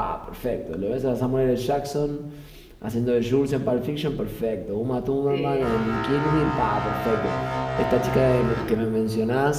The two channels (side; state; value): both; identical; correlation 1.00